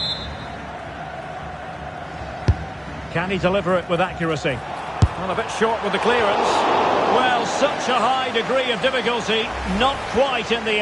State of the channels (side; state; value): both; identical; correlation 1.00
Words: Can he deliver it with accuracy? Well, a bit short with the clearance. Well, such a high degree of difficulty, not quite in the